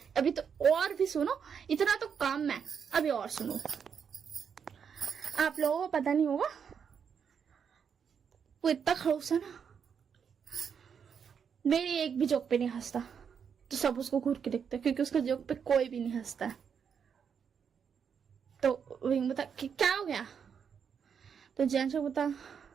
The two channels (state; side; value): quieter; left; 7.1 dB